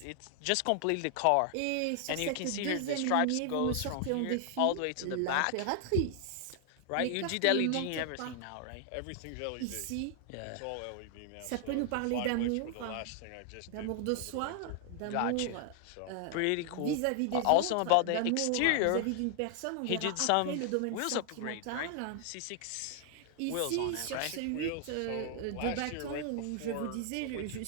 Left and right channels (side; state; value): both; different; correlation 0.00